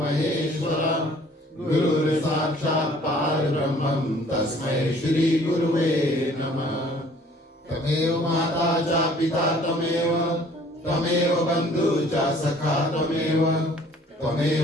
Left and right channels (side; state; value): both; normal; correlation 0.55